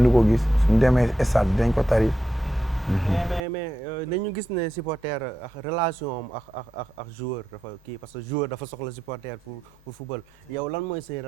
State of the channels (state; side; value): normal; both; correlation 0.86